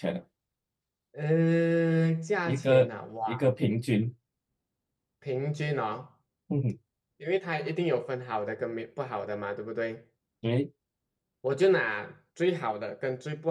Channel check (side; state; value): both; identical; correlation 1.00